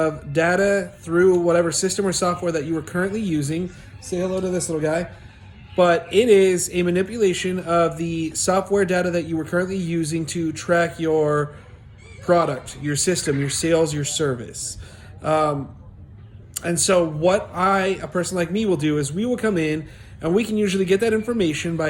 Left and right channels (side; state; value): both; identical; correlation 1.00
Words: data through whatever system or software that you are currently using. Say hello to this little guy. But it is a manipulation of the software data that you were currently using to track your product, your system, your sales, your service. And so, what a person like me, will do is we will come in and we can usually get that information